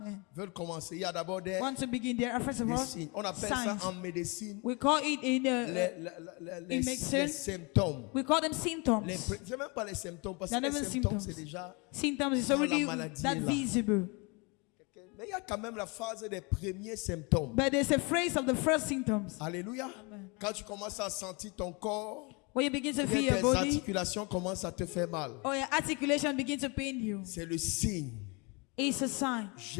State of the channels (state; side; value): quieter; right; 30.0 dB